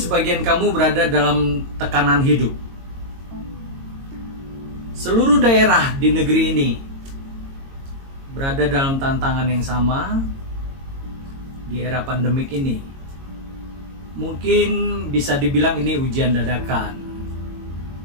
kamu berada dalam tekanan hidup. Seluruh daerah di negeri ini berada dalam tantangan yang sama di era pandemik ini. Mungkin bisa dibilang ini ujian dadakan,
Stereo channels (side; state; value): left; late; 22 ms